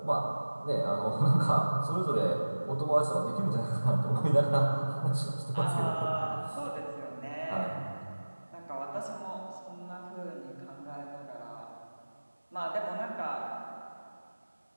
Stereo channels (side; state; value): both; inverted; correlation -1.00